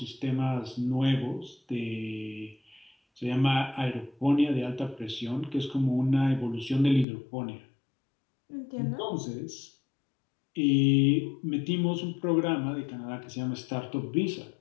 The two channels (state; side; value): drops out; right; at 7.1 s